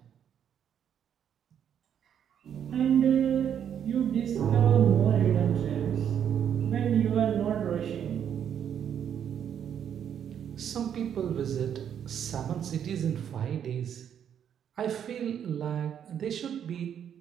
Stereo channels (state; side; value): quieter; left; 8.9 dB